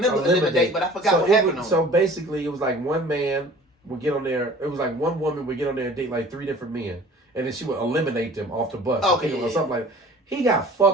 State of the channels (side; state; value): both; normal; correlation 0.47